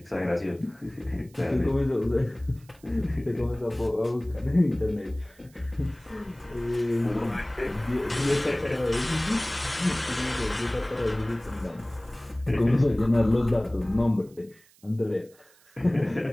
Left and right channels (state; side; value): noise; right; hiss, 29 dB below the sound